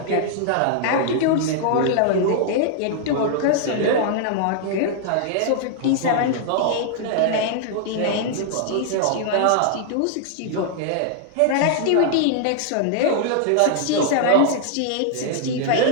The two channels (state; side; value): different; both; correlation -0.01